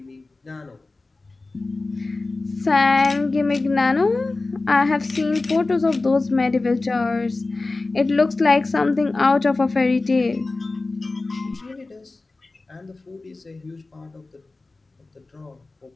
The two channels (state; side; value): quieter; right; 3.4 dB